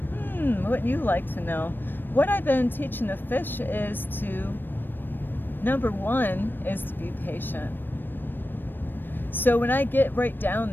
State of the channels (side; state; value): right; late; 0.094 ms